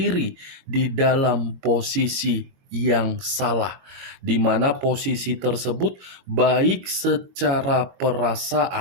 di dalam posisi yang salah, di mana posisi tersebut baik secara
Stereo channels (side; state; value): left; late; 22 ms